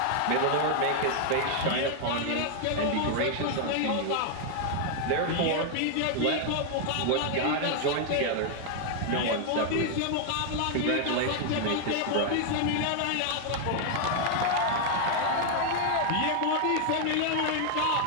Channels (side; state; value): both; different; correlation 0.00